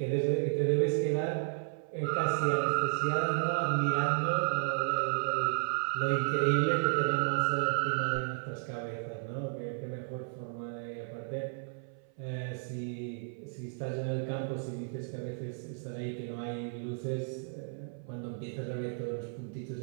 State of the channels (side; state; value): left; silent; 56 dB below the other